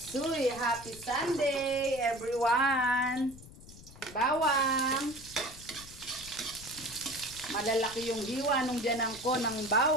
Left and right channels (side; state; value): left; noise; rumble, 18 dB below the sound